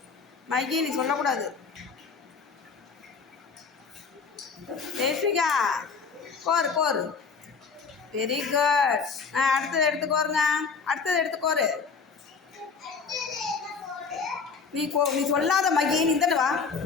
மகி நீ சொல்லக்கூடாது. தேசிகா கோரு கோரு. Very good. அடுத்தது எடுத்துக்கோருங்க. அடுத்தது எடுத்துக்கோரு. நீ நீ சொல்லாத மகி, நீ இந்த வா.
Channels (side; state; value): right; quieter; 5.3 dB